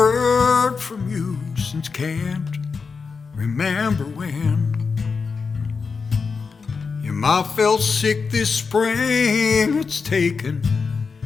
from you since can't remember when. Your ma fell sick this spring. It's taken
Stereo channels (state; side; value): quieter; right; 5.1 dB